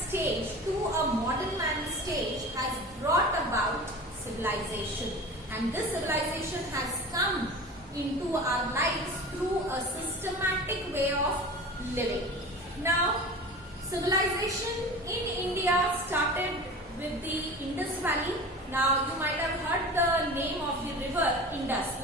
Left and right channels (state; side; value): normal; both; correlation 0.35